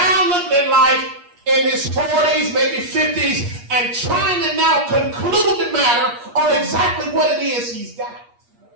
looking at life in his 40s, maybe 50s, and trying to now conclude the matter on exactly what it is he's got.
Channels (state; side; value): late; left; 8.4 ms